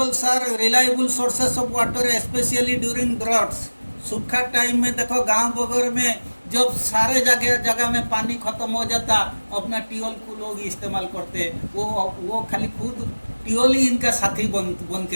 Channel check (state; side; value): inverted; both; correlation -1.00